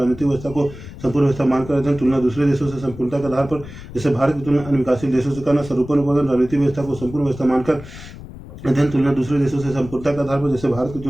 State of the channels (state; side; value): noise; left; rumble, 15 dB below the sound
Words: व्यवस्था को संपूर्ण व्यवस्था मानकर अध्ययन। तुलना दूसरे देशों से संपूर्णता के आधार पर। जैसे भारत की तुलना अन्य विकासशील देशों से करना। स्वरूपन उपागम राजनीतिक व्यवस्था को संपूर्ण व्यवस्था मानकर अध्ययन। तुलना दूसरे देशों से संपूर्णता के आधार पर। जैसे भारत की